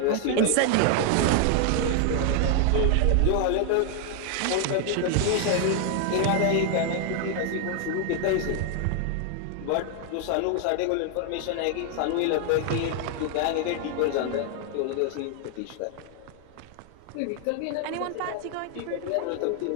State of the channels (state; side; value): different; both; correlation 0.00